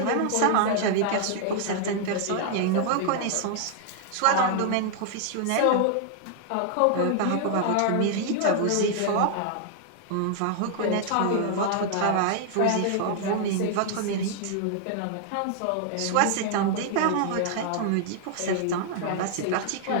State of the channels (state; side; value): different; both; correlation 0.00